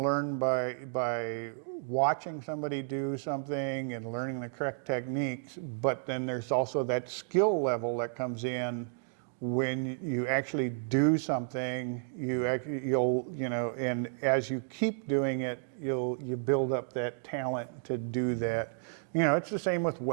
learn by watching somebody do something and learning the correct techniques, but then there's also that skill level that comes in when you actually do something. You'll you know, and as you keep doing it, you build up that talent to do that. You know, it's the same with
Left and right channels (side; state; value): left; silent; digital silence